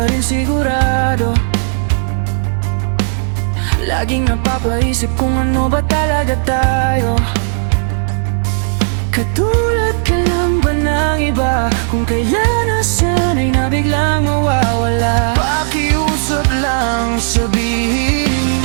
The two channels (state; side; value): silent; left; digital silence